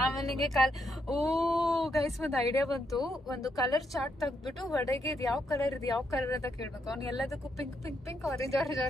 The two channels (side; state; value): both; normal; correlation 0.78